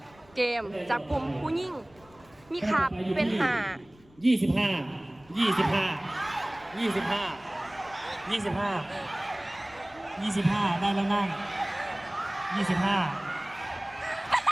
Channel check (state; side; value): noise; left; rumble, 27 dB below the sound